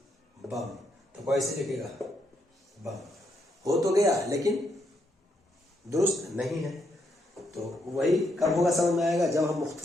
बम, तो कैसे लिखेगा बम। हो तो गया लेकिन दुरुस्त नहीं है। तो वही कब होगा समझ में आएगा, जब हम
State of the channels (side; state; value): both; normal; correlation 0.77